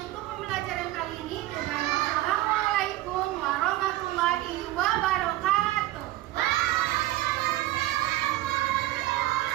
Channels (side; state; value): left; quieter; 16.0 dB